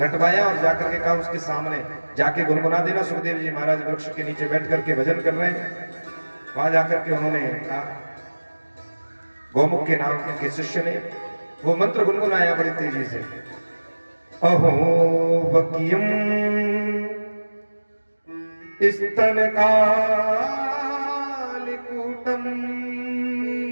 और जाकर के कहा उसके सामने जाके गुनगुना देना। सुखदेव जी महाराज वृक्ष के नीचे बैठ करके भजन कर रहे हैं। वहां जाकर के उन्होंने कहा, गौमुख के नाम के शिष्य ने वो मंत्र गुनगुनाया बड़ी तेजी से। अहो वकीयम स्तन कालिकूटम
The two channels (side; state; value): both; inverted; correlation -1.00